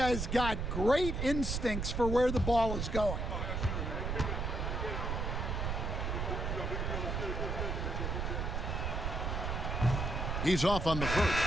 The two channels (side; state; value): right; noise; rumble, 1 dB below the sound